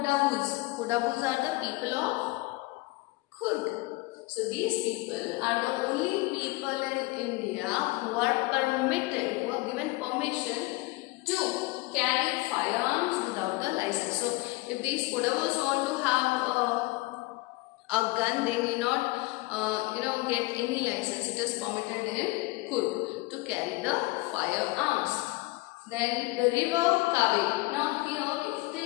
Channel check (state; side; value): quieter; right; 22.8 dB